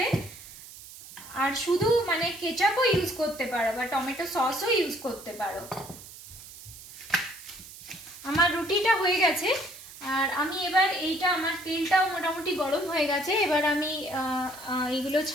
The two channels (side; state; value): right; noise; hiss, 16 dB below the sound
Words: আর শুধু মানে কেচাপও ইউজ করতে পারো বা টমেটো সসও ইউজ করতে পারো। আমার রুটিটা হয়ে গেছে, আর আমি এবার এইটা, আমার তেলটাও মোটামুটি গরম হয়ে গেছে, এবার আমি এইগুলো